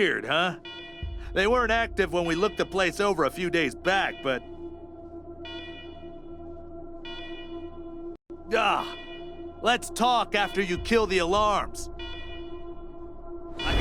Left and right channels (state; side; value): identical; both; correlation 1.00